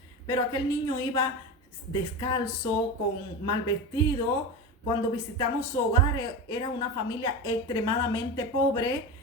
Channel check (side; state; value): both; normal; correlation 0.23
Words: Pero aquel niño iba descalzo, con mal vestido. Cuando visitamos su hogar, era una familia extremadamente pobre